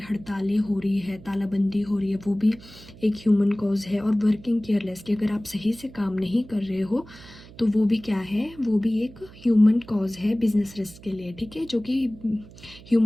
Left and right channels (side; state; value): right; noise; hum, 20 dB below the sound